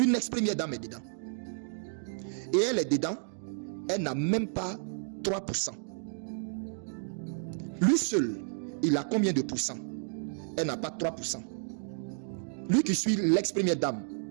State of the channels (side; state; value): left; silent; digital silence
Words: Une ex-première dame est dedans. Et elle est dedans, elle n'a même pas 3%. Lui seul, il a combien de pourcents? Elle n'a pas 3%. Lui qui suit l'ex-première dame,